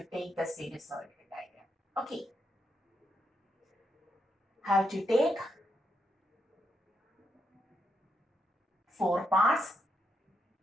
take the sinusoidal diagram. Okay, have to take 4 parts.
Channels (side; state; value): both; normal; correlation 0.81